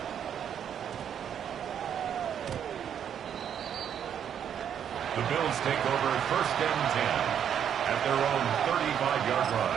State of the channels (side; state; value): left; quieter; 8.8 dB